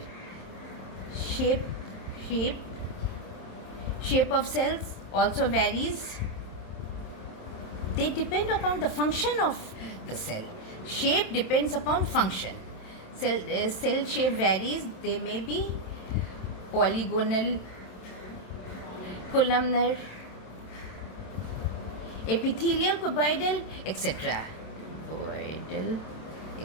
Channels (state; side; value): late; right; 27 ms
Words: Shape of cells also varies. They depend upon the function of the cell. Shape depends upon function. Cell shape varies. They may be polygonal, columnar, epithelial, cuboidal, etc.